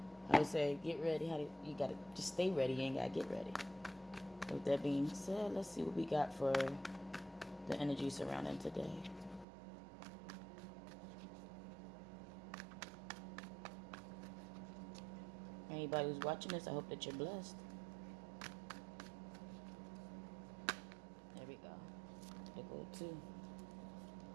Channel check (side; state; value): left; drops out; at 9.5 s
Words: How they say, get ready. You gotta just stay ready. You ain't gotta get ready. With that being said, let's see what we got for the energy surrounding today. Anybody who's watching this, I hope that you're blessed. There we go. There go two.